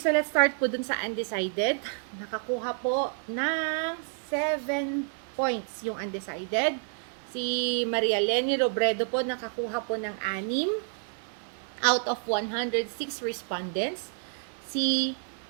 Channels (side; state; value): left; silent; 58 dB below the other